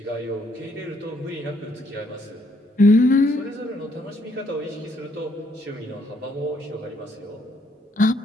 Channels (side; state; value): both; normal; correlation 0.70